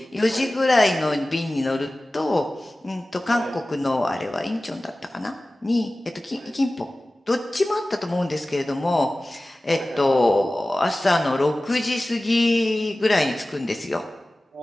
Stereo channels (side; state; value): both; normal; correlation 0.97